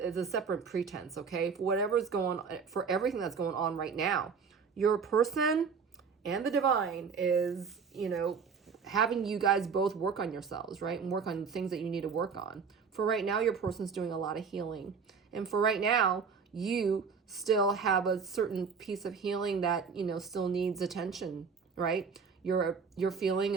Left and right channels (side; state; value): left; quieter; 5.9 dB